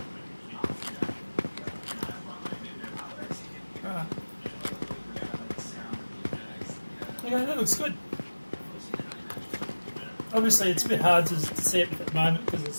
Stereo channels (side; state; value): both; inverted; correlation -1.00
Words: Yeah, that looks good. Obviously, it's a bit hard to see it at the moment because